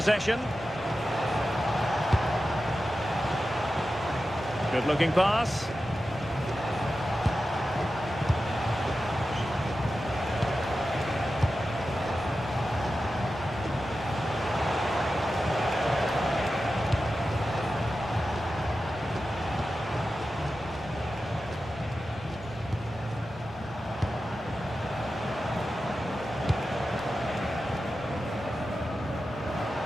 Good looking pass.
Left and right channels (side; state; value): both; normal; correlation 0.92